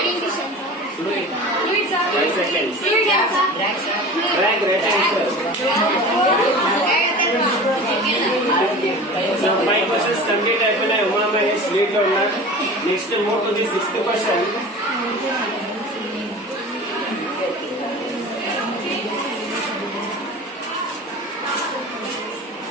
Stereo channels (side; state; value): both; normal; correlation 0.36